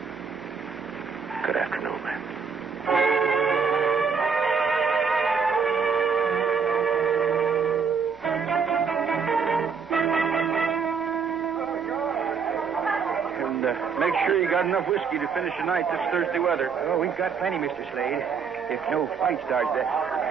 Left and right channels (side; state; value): left; quieter; 5.9 dB